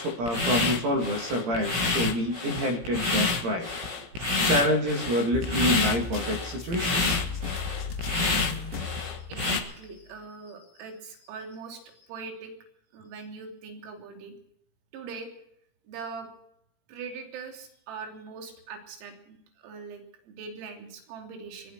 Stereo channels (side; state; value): left; late; 17 ms